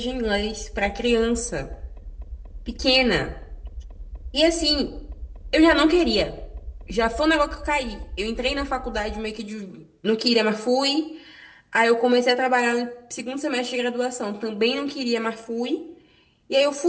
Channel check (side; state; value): both; identical; correlation 1.00